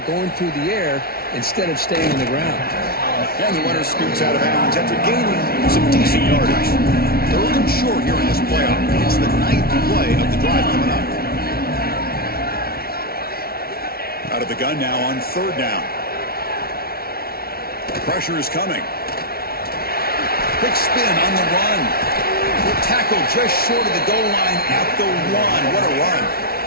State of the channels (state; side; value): late; right; 0.44 ms